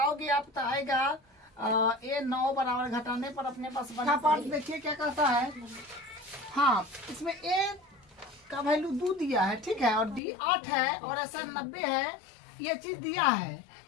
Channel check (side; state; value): right; drops out; at 10.2 s